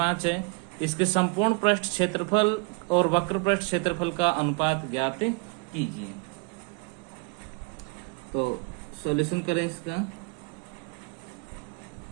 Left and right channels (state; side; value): quieter; left; 31.4 dB